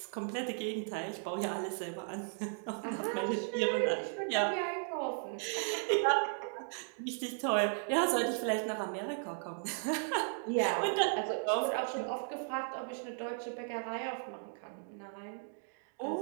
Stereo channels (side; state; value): left; silent; 54 dB below the other